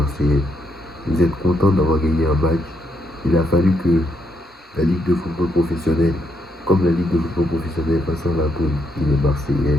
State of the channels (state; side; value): normal; both; correlation 0.76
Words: Vous êtes contents d'avoir gagné un match. Il a fallu que la Ligue de football professionnel, comme la Ligue de football professionnel, Vincent Labrune, il est Marseillais,